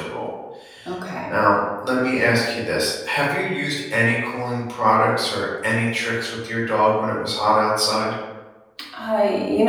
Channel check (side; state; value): both; identical; correlation 1.00